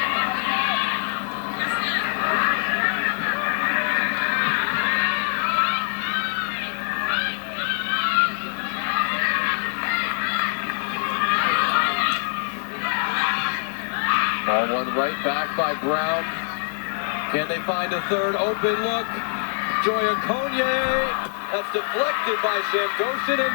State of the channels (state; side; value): silent; right; 56 dB below the other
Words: Ball one right back by Brown. Can they find a third open look? Joya Conye. That's deflected by Shamgoshin and